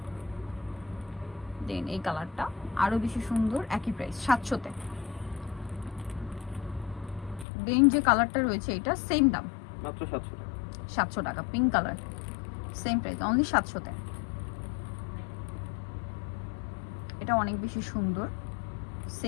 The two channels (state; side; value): drops out; right; at 7.5 s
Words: দেন এই কালারটা আরো বেশি সুন্দর, একই প্রাইস 700-তে। দেন যে কালারটা রয়েছে এটা সেম দাম মাত্র 700 টাকা। 700 টাকা, pink colour same price only 700-তে। এটা অনেক বেশি সুন্দর,